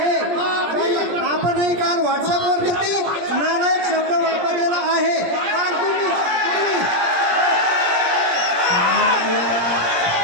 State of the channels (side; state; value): left; late; 17 ms